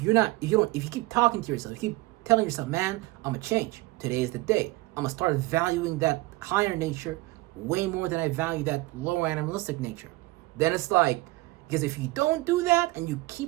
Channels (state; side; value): quieter; left; 20.7 dB